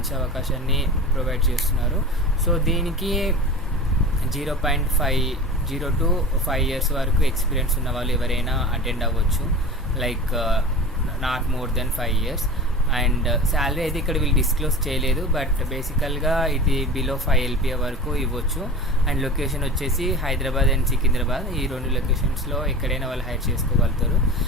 అవకాశాన్ని ప్రొవైడ్ చేస్తున్నారు. సో దీనికి 0.50 to 5 years వరకు ఎక్స్పీరియన్స్ ఉన్న వాళ్ళు ఎవరైనా అటెండ్ అవ్వచ్చు, like not more than 5 years. And salary అయితే ఇక్కడ వీళ్ళు డిస్క్లోజ్ చేయలేదు, బట్ బేసికల్గా ఇది బిలో 5 LPA వరకు ఇవ్వచ్చు. అండ్ లొకేషన్ వచ్చేసి హైదరాబాద్ అండ్ సికింద్రాబాద్, ఈ 2 లొకేషన్స్లో ఎక్కడైనా వాళ్ళు హైర్ చేసుకోగలుగుతారు.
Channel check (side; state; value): both; normal; correlation 0.33